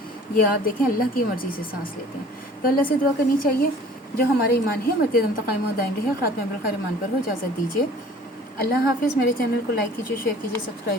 ये आप देखें अल्लाह की मर्ज़ी से सांस लेते हैं। तो अल्लाह से दुआ करनी चाहिए जो हमारे ईमान है मरते दम तक कायम दायम रहे, ख़ात्मा बिल खैर ईमान पर हो। इजाज़त दीजिए। अल्लाह हाफ़िज़। मेरे चैनल को लाइक कीजिए, शेयर कीजिए,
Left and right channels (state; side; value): normal; both; correlation 0.49